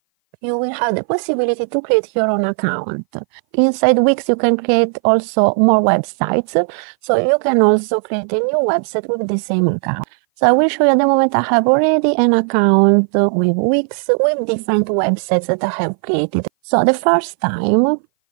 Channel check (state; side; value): silent; left; 58 dB below the other